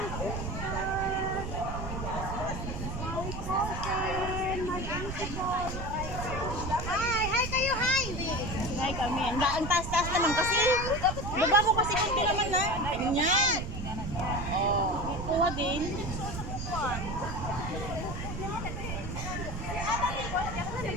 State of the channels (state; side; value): noise; right; rumble, 6 dB below the sound